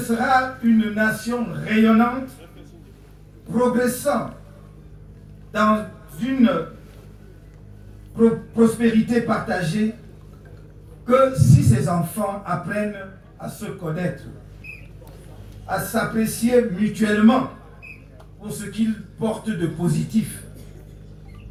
une nation rayonnante, progressant dans une prospérité partagée que si ses enfants apprennent à se connaître, à s'apprécier mutuellement pour ce qu'ils portent de positif,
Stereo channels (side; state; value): both; identical; correlation 1.00